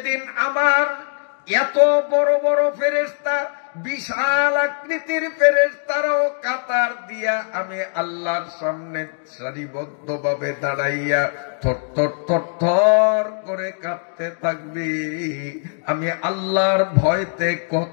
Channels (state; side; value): silent; right; 65 dB below the other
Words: আমার এত বড় বড় ফেরেশতা, বিশাল আকৃতির ফেরেশতারাও কাতার দিয়া আমি আল্লাহর সামনে সারিবদ্ধ ভাবে দাঁড়াইয়া থরথর থরথর করে কাঁপতে থাকবি। আমি আল্লাহর ভয়তে